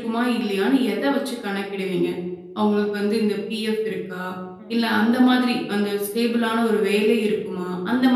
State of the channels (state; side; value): identical; both; correlation 1.00